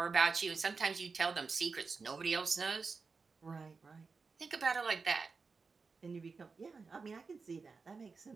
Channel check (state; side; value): quieter; left; 4.6 dB